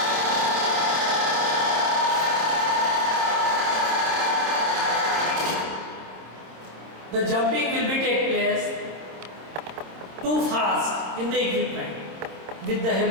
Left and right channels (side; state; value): left; late; 27 ms